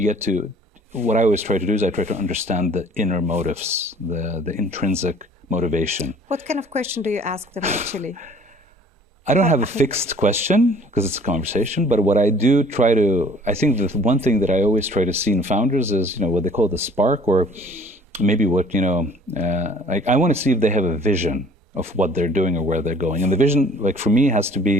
get to, what I always try to do is I try to understand the inner motives, the intrinsic motivation. What kind of question do you ask them actually? I don't have a fixed question because it's a conversation, but what I do try to, I think the one thing that I always try to see in founders is, what they call the spark, or maybe what, I want to see if they have a vision of what they're doing or where they're going. And the vision, for me, has to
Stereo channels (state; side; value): normal; both; correlation 0.53